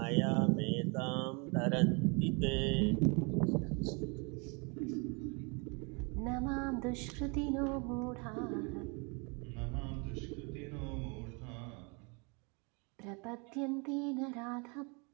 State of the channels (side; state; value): left; quieter; 32.4 dB